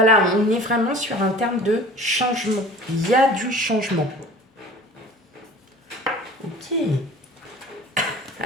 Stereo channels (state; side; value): normal; both; correlation 0.43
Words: on est vraiment sur un terme de changement. Il y a du changement. Ok.